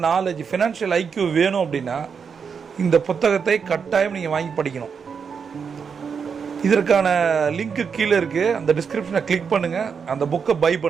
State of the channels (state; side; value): quieter; left; 6.2 dB